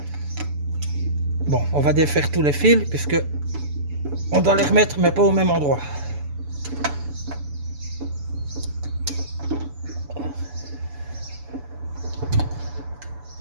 Bon, on va défaire tous les fils, puisque on doit les remettre, mais pas au même endroit.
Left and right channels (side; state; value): left; late; 7.0 ms